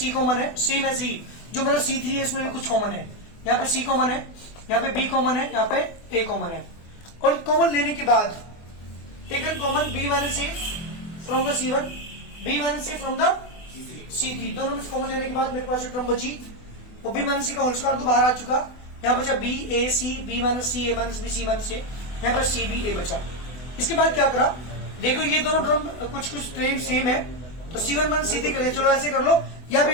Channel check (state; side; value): late; right; 24 ms